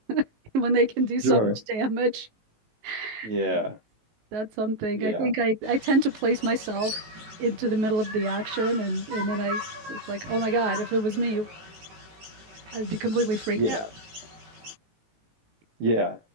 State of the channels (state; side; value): late; left; 18 ms